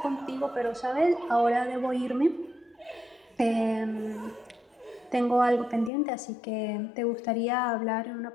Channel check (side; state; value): right; drops out; at 5.9 s